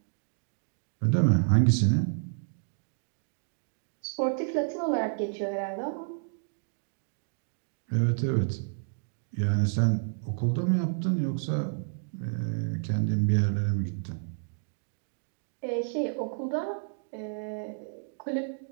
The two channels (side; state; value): left; silent; digital silence